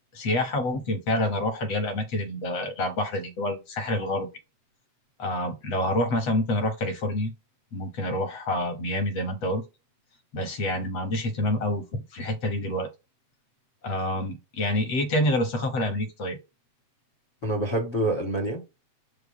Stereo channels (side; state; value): right; late; 8.0 ms